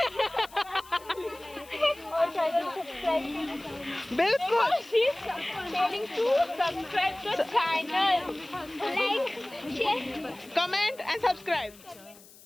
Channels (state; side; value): noise; left; hiss, 22 dB below the sound